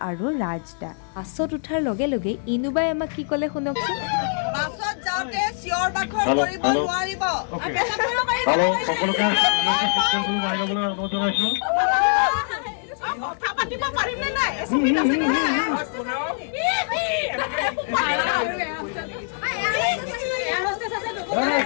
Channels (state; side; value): silent; right; digital silence